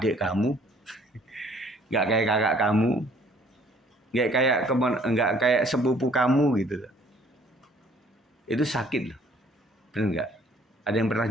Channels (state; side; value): normal; both; correlation 0.59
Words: kamu, nggak kayak kakak kamu, nggak kayak sepupu kamu gitu loh. Itu sakit loh, benar nggak? Ada yang pernah